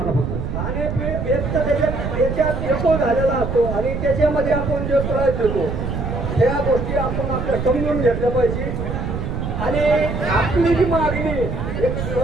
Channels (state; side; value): noise; right; rumble, 3 dB below the sound